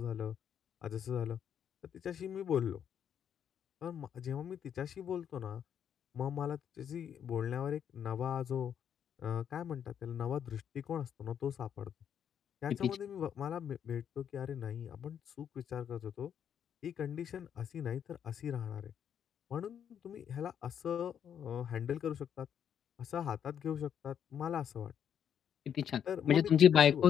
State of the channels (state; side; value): quieter; right; 8.7 dB